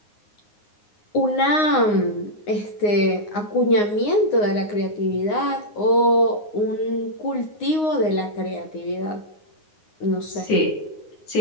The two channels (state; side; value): late; right; 9.6 ms